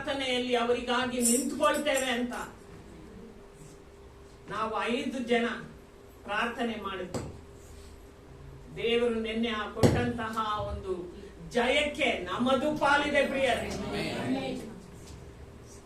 ಅವರಿಗಾಗಿ ನಿಂತ್ಕೊಳ್ತೇವೆ ಅಂತ ನಾವು 5 ಜನ ಪ್ರಾರ್ಥನೆ ಮಾಡಿದ್ವಿ. ದೇವರು ನಿನ್ನೆ ಕೊಟ್ಟಂತಹ ಒಂದು ಜಯಕ್ಕೆ ನಮ್ಮದು ಪಾಲಿದೆ ಪ್ರಿಯರೇ.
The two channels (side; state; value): both; identical; correlation 1.00